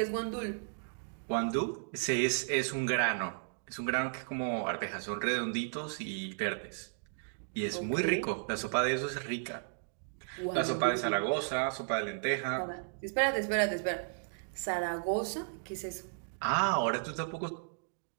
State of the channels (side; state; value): left; silent; digital silence